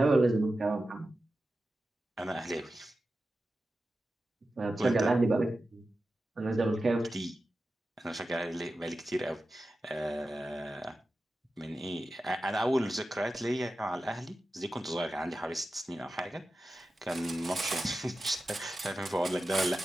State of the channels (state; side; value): normal; both; correlation 0.93